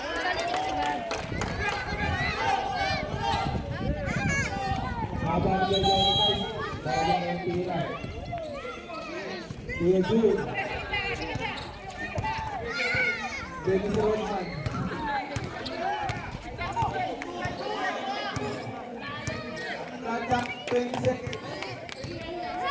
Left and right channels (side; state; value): both; identical; correlation 1.00